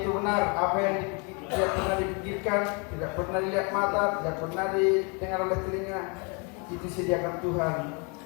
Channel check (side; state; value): right; quieter; 33.8 dB